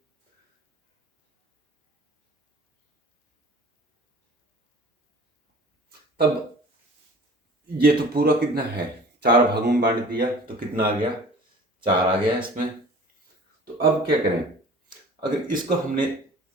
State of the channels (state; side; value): normal; both; correlation 0.45